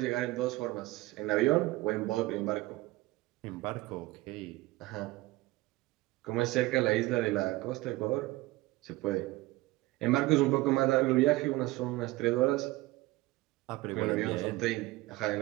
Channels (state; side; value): quieter; left; 19.7 dB